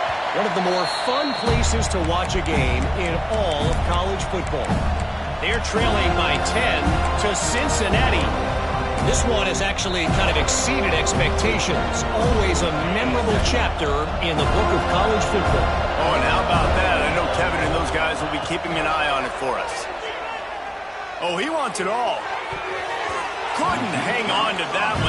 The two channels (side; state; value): both; identical; correlation 1.00